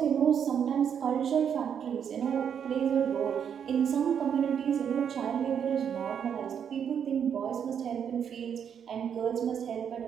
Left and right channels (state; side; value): quieter; left; 8.0 dB